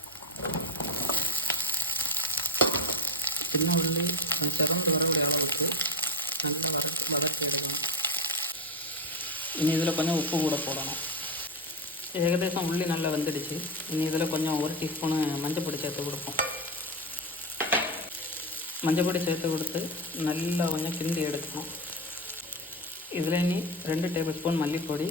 சின்ன உள்ளி செவந்து வரக்கூடிய அளவுக்கு நல்லா வதக்கி எடுக்கணும். இனி இதில் கொஞ்சம் உப்பு கூட போடணும். ஏகദേശம் உள்ளி நல்லா வெந்துடுச்சு. இனி இதில் கொஞ்சம் 1 டீஸ்பூனு மஞ்சள் சேர்த்து கொடுப்போம். மஞ்சள் சேர்த்து கொடுத்து நல்லா கொஞ்சம் கிண்டி எடுக்கணும். இதில் இனி 2 டேபிள் ஸ்பூன் மல்லிப்பொடி,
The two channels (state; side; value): normal; both; correlation 0.15